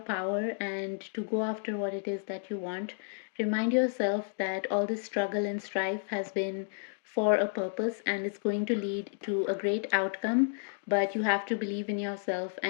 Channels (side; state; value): right; silent; digital silence